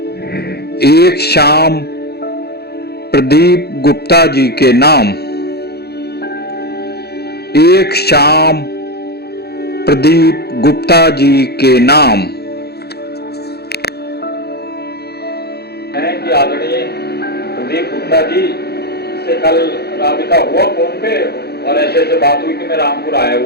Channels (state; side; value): late; right; 0.47 ms